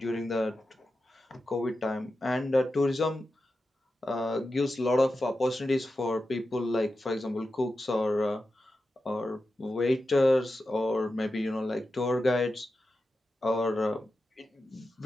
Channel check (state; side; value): normal; both; correlation 0.91